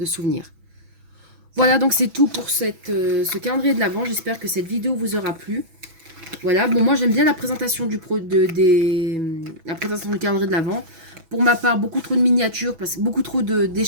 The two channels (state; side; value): late; left; 6.1 ms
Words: souvenirs. Voilà, donc c'est tout pour ce calendrier de l'Avent. J'espère que cette vidéo vous aura plu. Voilà, bon, moi j'aime bien la présentation la présentation du calendrier de l'Avent. Pour ma part, beaucoup trop de miniatures, beaucoup trop